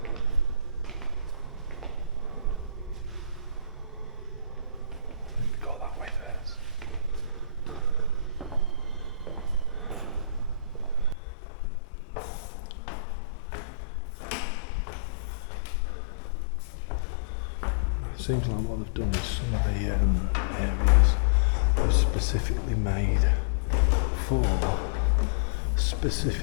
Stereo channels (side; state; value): right; drops out; at 11.2 s